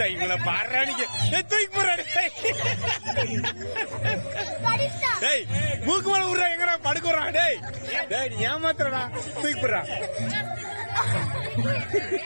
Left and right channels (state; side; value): inverted; both; correlation -1.00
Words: இவங்கள பாடுறானிக்கு தூக்கி போடுறாரு. டேய் மூக்கு மேல விடுறா எங்கடா படுக்குறான். டேய் டேய் நீ ஏமாத்துறடா தூக்கி போடுறா.